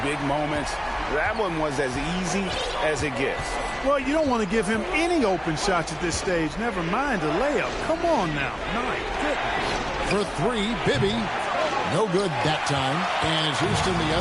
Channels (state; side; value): identical; both; correlation 1.00